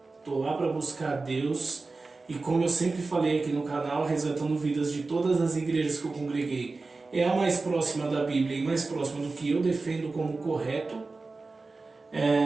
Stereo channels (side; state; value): left; quieter; 3.7 dB